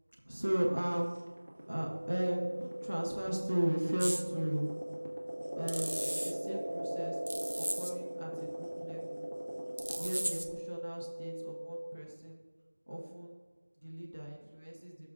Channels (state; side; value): inverted; both; correlation -1.00